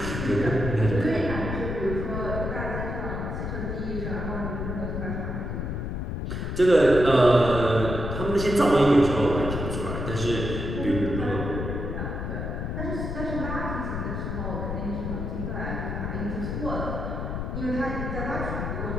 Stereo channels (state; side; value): noise; left; rumble, 3 dB below the sound